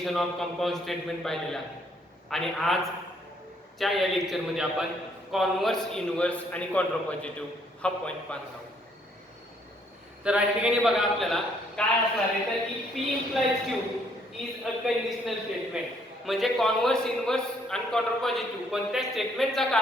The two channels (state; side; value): normal; both; correlation 0.67